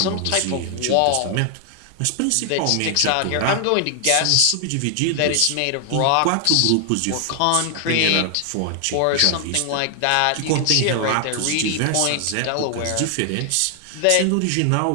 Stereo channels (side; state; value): both; different; correlation 0.00